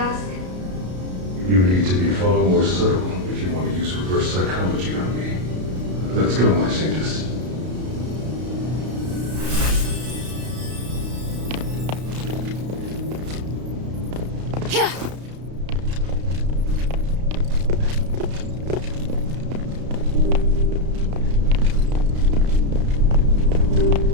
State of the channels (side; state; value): left; late; 33 ms